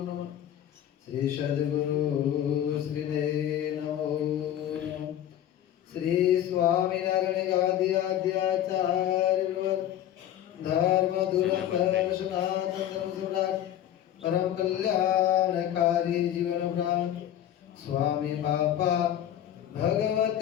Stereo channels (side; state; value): right; quieter; 11.3 dB